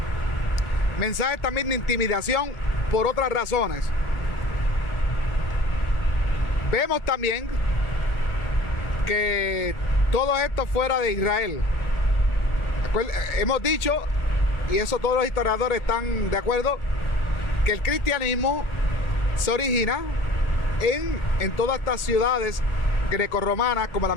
mensajes también de intimidación por otras razones. Vemos también que todo esto fuera de Israel. Hemos dicho, y eso todos los historiadores están de acuerdo, que el cristianismo se origina en todas estas ciudades grecorromanas, como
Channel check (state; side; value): late; right; 1.4 ms